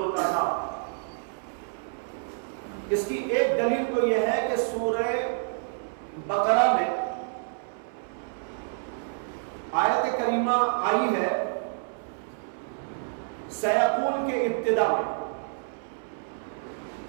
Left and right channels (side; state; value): left; silent; 59 dB below the other